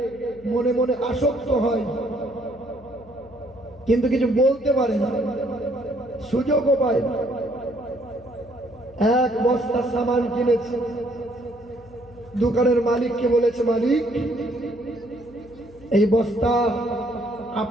মনে মনে আসক্ত হয়, কিন্তু কিছু বলতে পারে না, সুযোগও পায় না। 1 বস্তা সামান কিনেছে, দোকানের মালিককে বলেছে, মালিক এই বস্তা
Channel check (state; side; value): noise; left; hum, 23 dB below the sound